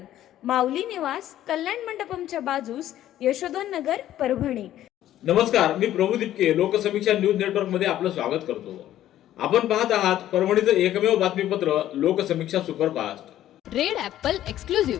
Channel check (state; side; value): quieter; right; 12.7 dB